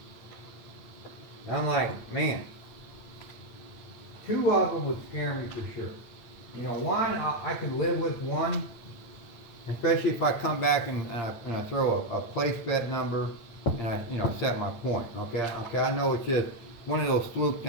I'm like, man, 2 of them would scare me for sure. You know, one, I can live with one, especially if I come back and I throw a place bet number and I, you know, set my point. Okay, I know it's just one of those fluke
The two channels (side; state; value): right; late; 8.9 ms